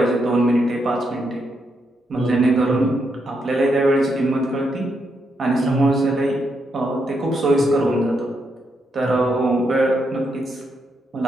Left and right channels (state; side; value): normal; both; correlation 0.80